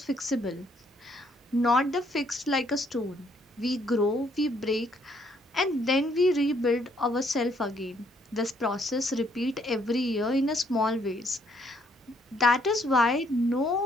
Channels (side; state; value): both; normal; correlation 0.68